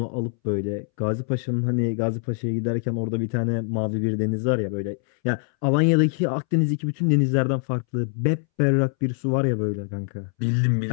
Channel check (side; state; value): right; silent; 63 dB below the other